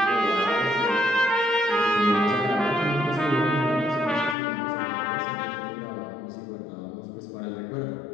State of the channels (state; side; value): drops out; right; at 4.4 s